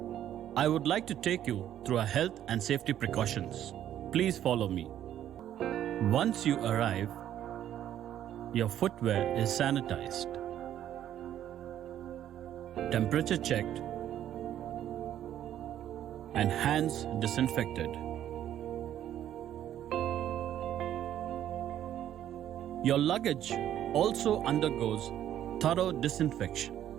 I would like to take you through our health and safety precautions. Please follow me. Once you arrive, your footwear is sanitized, temperature checked, and hands disinfected. Your luggage also undergoes thorough disinfection.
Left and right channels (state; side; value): quieter; left; 11.2 dB